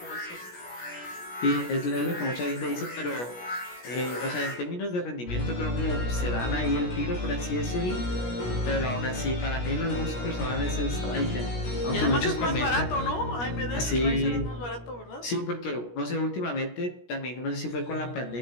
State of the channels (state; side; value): late; right; 17 ms